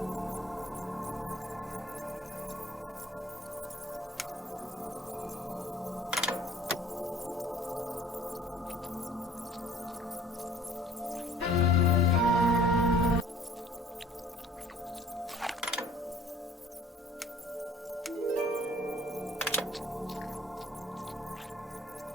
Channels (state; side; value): normal; both; correlation 0.52